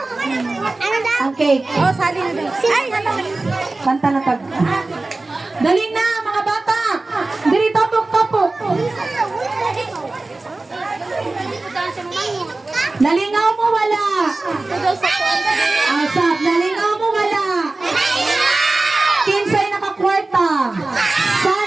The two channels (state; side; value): quieter; left; 3.2 dB